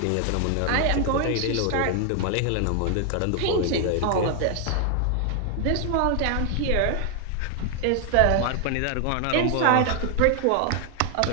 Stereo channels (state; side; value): different; both; correlation 0.00